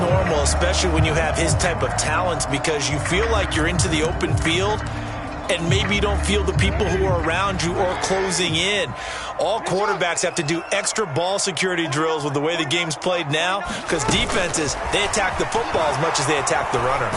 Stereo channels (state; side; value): identical; both; correlation 1.00